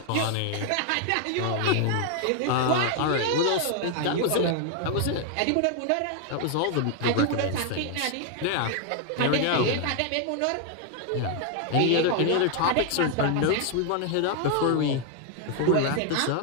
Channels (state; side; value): different; both; correlation 0.00